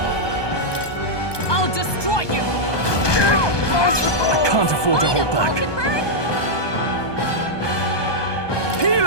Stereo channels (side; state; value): right; late; 1.2 ms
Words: I'll destroy you. I can't afford to hold back. Falconbird?